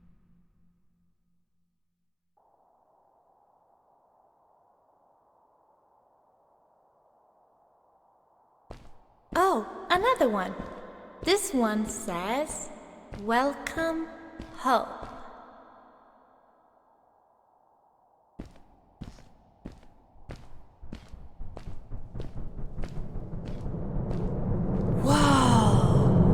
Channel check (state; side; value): identical; both; correlation 1.00